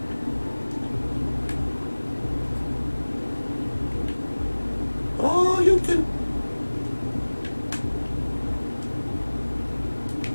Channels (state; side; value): inverted; both; correlation -1.00